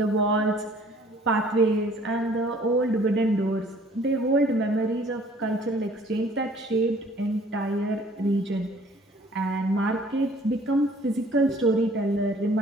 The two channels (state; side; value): normal; both; correlation 0.55